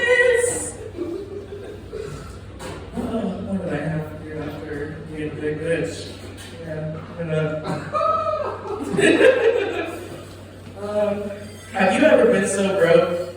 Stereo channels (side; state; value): both; identical; correlation 1.00